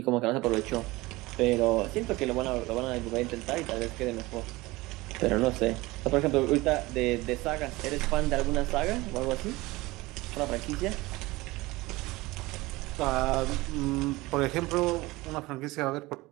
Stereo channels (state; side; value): quieter; left; 20.7 dB